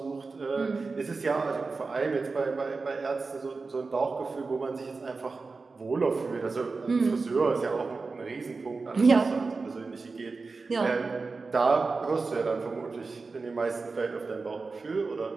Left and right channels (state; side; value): quieter; left; 4.1 dB